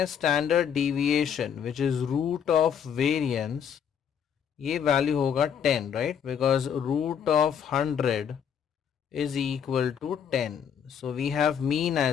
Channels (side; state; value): right; quieter; 8.0 dB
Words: standard deviation which is root of variance, ये वैल्यू होगा 10, right, because root of 100 is equal to 10. So we have mean